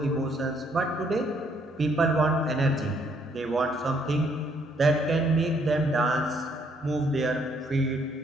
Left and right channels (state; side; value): normal; both; correlation 0.68